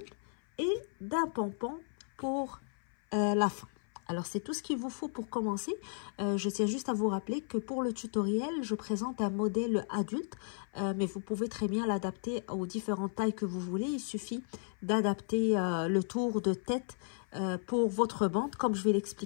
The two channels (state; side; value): silent; right; 55 dB below the other